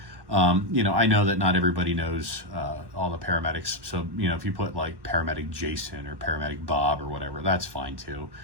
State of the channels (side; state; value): left; late; 1.1 ms